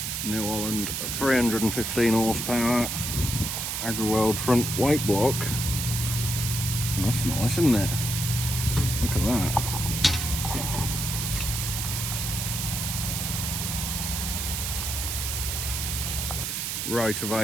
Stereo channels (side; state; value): right; noise; hiss, 2 dB below the sound